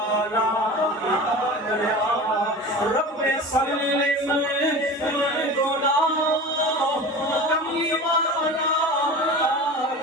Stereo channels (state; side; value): normal; both; correlation 0.34